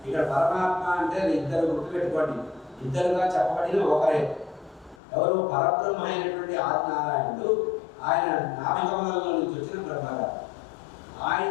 ఇక్కడ పరమాత్మ అంటే ఇద్దరు గుర్తుపెట్టుకోండి, ఇద్దరుగా చెప్పబడిన ఒకరే. ఎవరు? పరబ్రహ్మ అయినటువంటి ఆదినారాయణుడు, ఆయన నామకమలంలో నుంచి వచ్చిన బ్రహ్మగారు.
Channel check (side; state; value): right; drops out; at 5.0 s